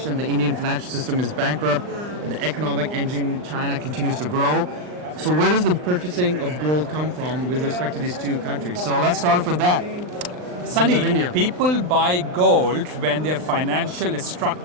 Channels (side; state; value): left; late; 39 ms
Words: the Indian financial system is bankrupt, the economic engine China continues to grow. So where does the purchasing of gold come from with respect to these two countries? So let's start with that. Sunny, people buy gold when their financial